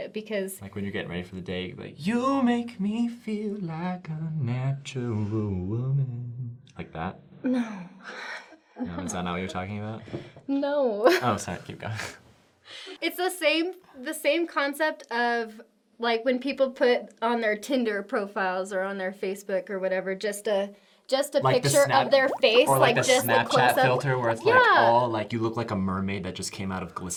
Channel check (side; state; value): both; identical; correlation 1.00